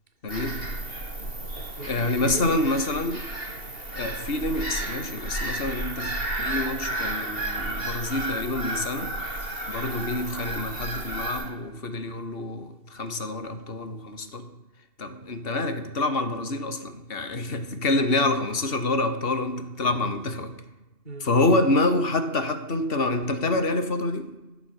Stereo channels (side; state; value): right; late; 2.7 ms